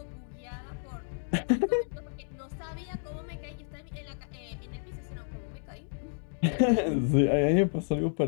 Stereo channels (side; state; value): right; silent; digital silence